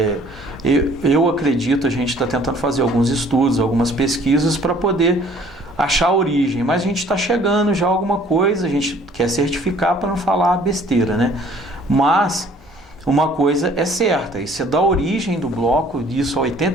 eu acredito, a gente está tentando fazer alguns estudos, algumas pesquisas para poder achar a origem. Mas a gente está chegando já a alguma coisa, a gente quer certificar para não falar besteira, né? Mas uma coisa é certa, isso é da origem do bloco, disso há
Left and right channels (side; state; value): both; normal; correlation 0.56